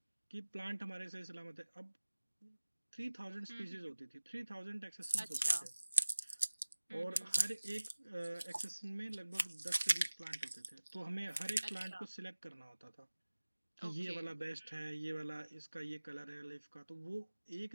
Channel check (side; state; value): both; inverted; correlation -1.00